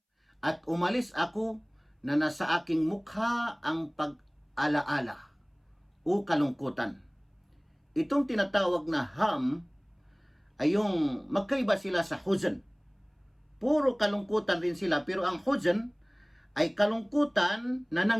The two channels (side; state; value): both; identical; correlation 1.00